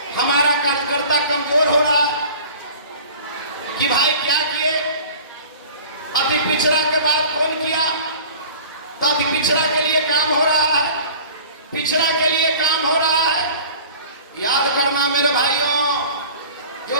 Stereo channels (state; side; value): inverted; both; correlation -0.43